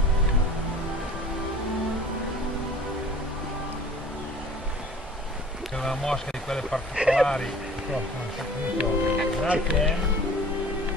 C'è una mosca di quelle particolari. Grazie.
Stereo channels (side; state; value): both; normal; correlation 0.46